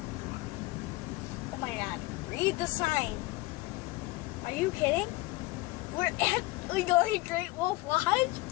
Oh my god. Read the sign. Are you kidding? We're actually going to Great Wolf Lodge?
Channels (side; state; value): right; quieter; 21.0 dB